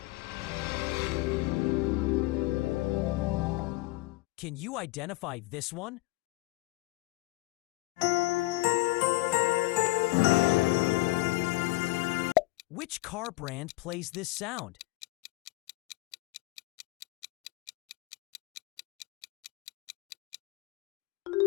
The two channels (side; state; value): right; quieter; 21.9 dB